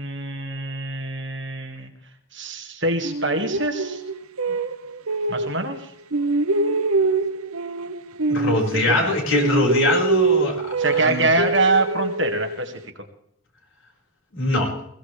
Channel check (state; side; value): normal; both; correlation -0.09